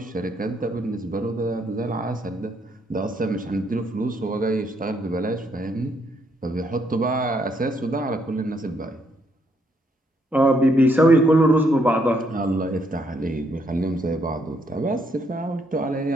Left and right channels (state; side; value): normal; both; correlation 0.73